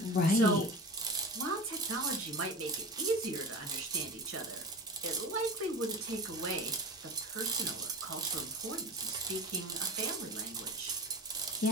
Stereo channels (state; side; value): normal; both; correlation 0.33